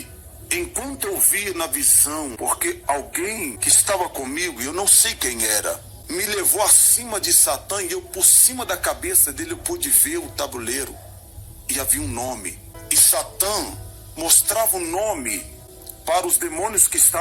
enquanto eu via na visão, porque alguém que estava comigo, eu não sei quem era, me levou acima de Satã e eu por cima da cabeça dele eu pude ver o tabuleiro. E havia um nome. E Satã mostrava o nome para os demônios que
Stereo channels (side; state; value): both; identical; correlation 1.00